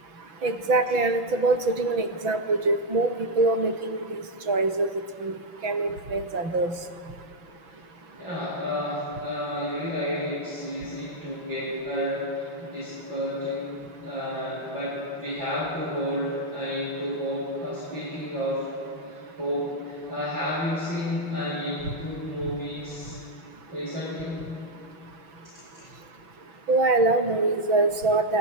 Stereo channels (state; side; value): late; left; 6.1 ms